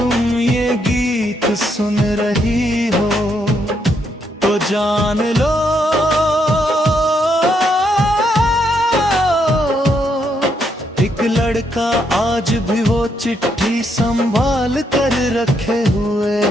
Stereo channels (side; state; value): both; normal; correlation 0.76